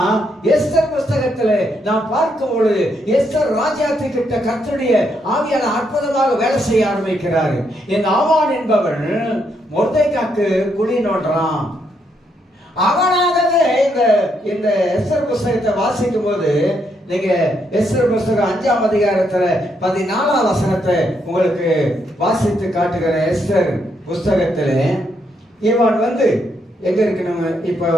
எஸ்தர் புஸ்தகத்துல நாம் பார்க்கும் பொழுது எஸ்தர் ராஜாத்தி கிட்ட கர்த்தருடைய ஆவியான அற்புதமாக வேலை செய்ய ஆரம்பிக்கிறாரு. இந்த ஆமான் என்பவன் மொர்தெக்காக்கு குழி நோண்டுறான். அவனாகவே இந்த எஸ்தர் புஸ்தகத்தை வாசிக்கும் போது நீங்க எஸ்தர் புஸ்தகம் 5ஆம் அதிகாரத்துல 14ஆம் வசனத்தை உங்களுக்கு வாசித்து காட்டுகிற எஸ்தர் புஸ்தகத்துல இவன் எங்க இருக்கு? நம்ம இப்ப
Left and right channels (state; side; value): normal; both; correlation 0.76